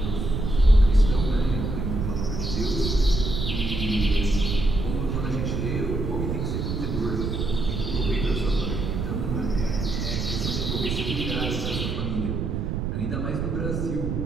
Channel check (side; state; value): right; noise; rumble, 2 dB below the sound